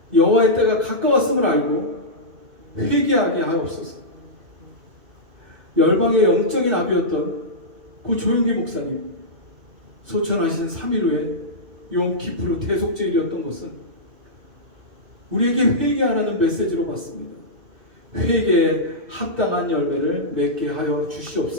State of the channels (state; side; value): late; left; 2.6 ms